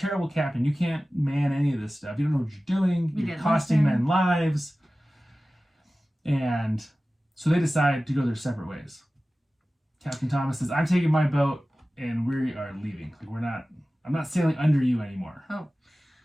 captain. You can't man any of this stuff. You don't know what you're doing. You're costing men lives. And so they decide to go their separate ways. Captain Thomas says, I'm taking my boat and we are leaving. I'm not sailing under you anymore. Oh.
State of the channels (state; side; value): normal; both; correlation 0.96